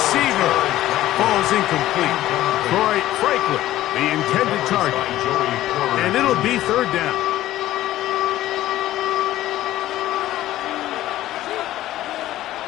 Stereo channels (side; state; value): right; quieter; 14.5 dB